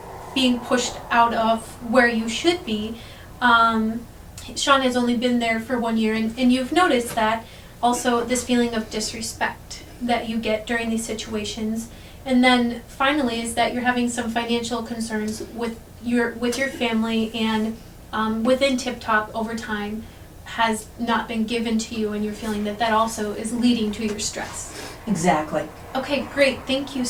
being pushed out of where you should be. Sean has only been there for 1 year, and you've noticed that also this feeling of disrespect that you get during these situations. And then finally is that you're having some financial concerns with your family, and within Tip Top overtime has not been given to you, and you're feeling that also is leading to your stress. Exactly. Okay, great, thank you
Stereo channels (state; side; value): identical; both; correlation 1.00